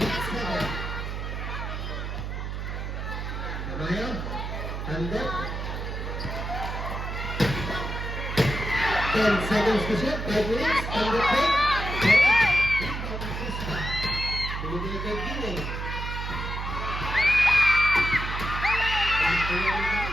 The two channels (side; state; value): right; noise; hum, 5 dB below the sound